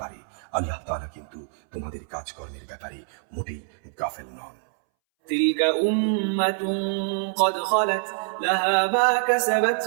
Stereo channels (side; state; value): left; silent; 61 dB below the other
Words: পারে? আল্লাহ তাআলা কিন্তু তোমাদের কাজকর্মের ব্যাপারে মোটেই গাফেল নন। تلك أمة قد خلت لها ما كسبت